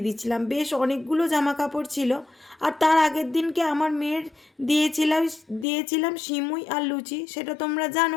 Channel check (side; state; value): right; drops out; at 5.7 s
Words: দিচ্ছিলাম। বেশ অনেকগুলো জামা কাপড় ছিল। আর তার আগের দিনকে আমার মেয়ের দিয়েছিলাম দিয়েছিলাম সিমুই আর লুচি, সেটা তোমরা